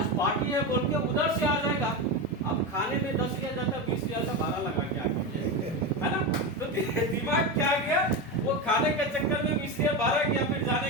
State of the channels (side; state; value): both; normal; correlation 0.17